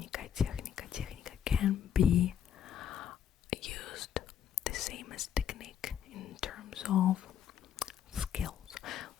can be used the same as technique in terms of skills.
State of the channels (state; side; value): quieter; right; 9.2 dB